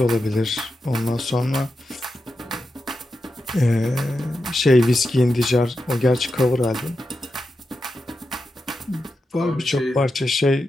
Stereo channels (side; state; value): both; normal; correlation 0.89